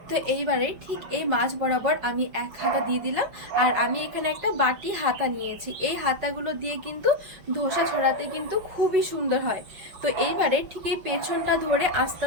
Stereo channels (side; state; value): left; late; 5.4 ms